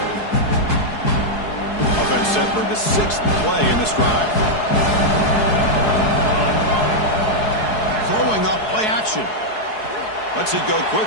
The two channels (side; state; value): right; late; 4.7 ms